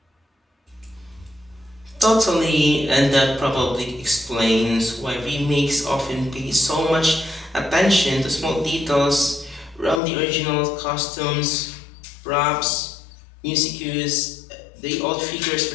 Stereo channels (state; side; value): drops out; right; at 10.0 s